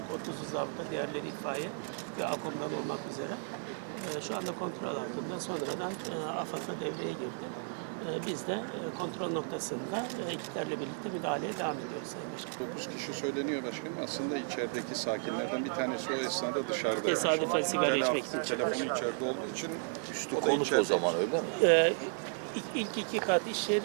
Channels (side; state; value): left; silent; 55 dB below the other